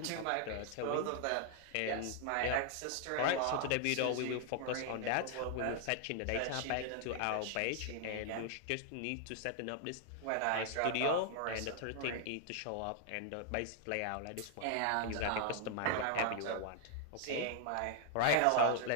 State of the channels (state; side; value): different; both; correlation 0.00